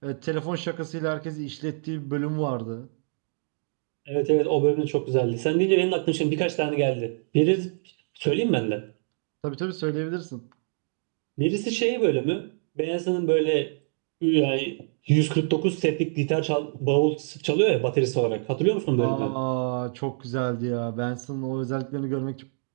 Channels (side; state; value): left; silent; digital silence